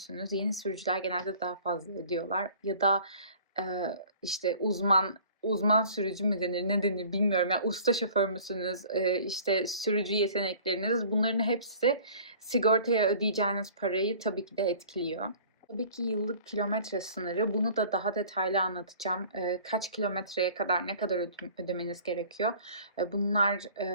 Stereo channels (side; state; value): both; inverted; correlation -0.49